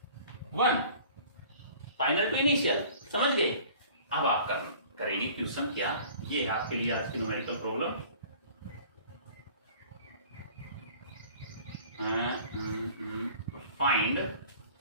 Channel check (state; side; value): inverted; both; correlation -0.48